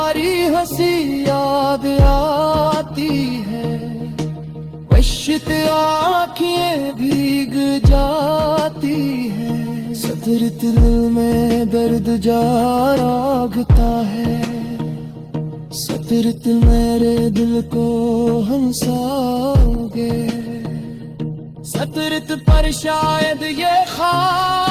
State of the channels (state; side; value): identical; both; correlation 1.00